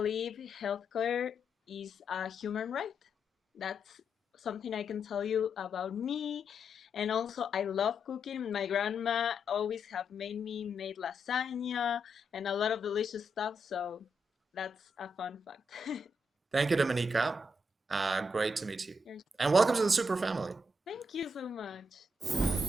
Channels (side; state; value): both; normal; correlation 0.81